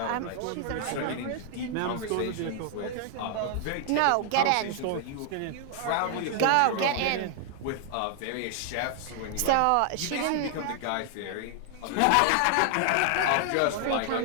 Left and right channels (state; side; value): different; both; correlation 0.00